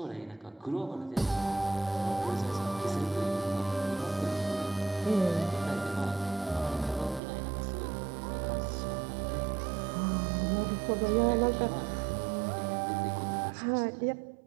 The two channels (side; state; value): left; drops out; at 7.2 s